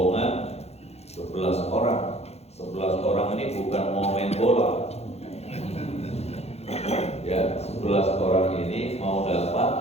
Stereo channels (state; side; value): late; right; 0.31 ms